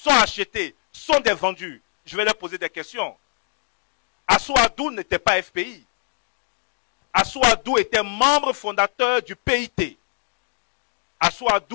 achetés, sont des vendus, je vais leur poser des questions. Assouadou n'était pas FPI. Assouadou était membre fondateur du PIT.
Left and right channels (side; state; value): right; silent; 63 dB below the other